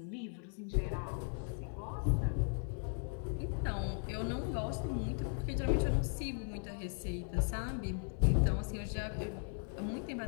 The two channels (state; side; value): silent; right; 53 dB below the other